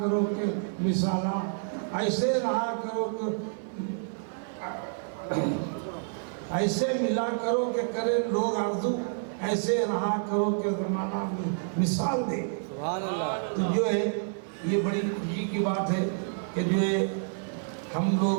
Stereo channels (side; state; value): left; silent; 59 dB below the other